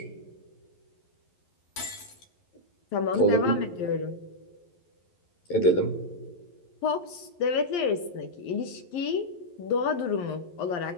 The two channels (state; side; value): late; right; 11 ms